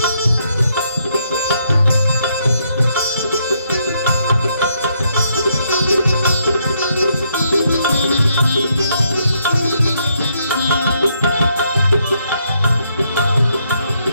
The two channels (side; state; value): both; inverted; correlation -0.74